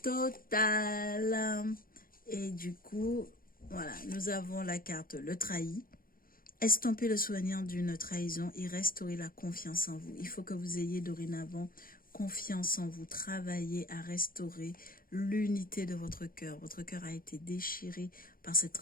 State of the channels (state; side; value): late; right; 0.42 ms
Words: total. Et du coup, voilà, nous avons la carte le trahi. Estomper le souvenir d'une trahison et restaurer la confiance en vous. Il faut que vous ayez dorénavant confiance en vous. Travaillez à restaurer l'unité de votre cœur. Votre cœur a été déchiré par cette